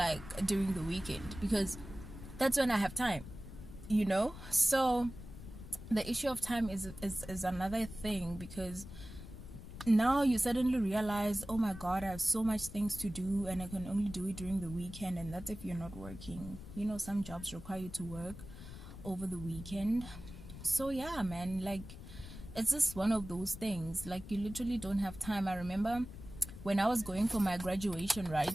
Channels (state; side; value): noise; left; rumble, 13 dB below the sound